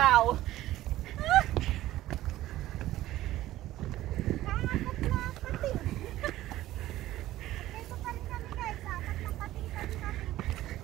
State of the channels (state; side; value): quieter; left; 15.1 dB